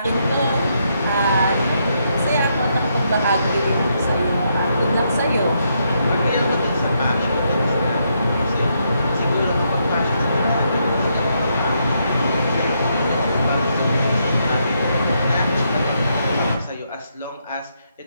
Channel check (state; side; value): inverted; both; correlation -0.78